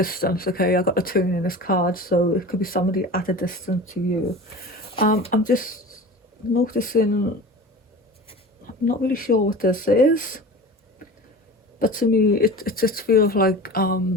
okay. I got a turn in this card, so it could be somebody at a distance to you. I'm just noticing, I'm not really sure what this is, but to me it just feels like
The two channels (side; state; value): both; normal; correlation 0.35